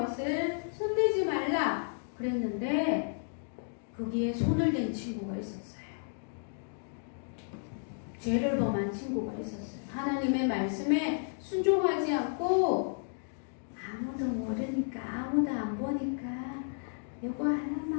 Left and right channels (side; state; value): right; silent; digital silence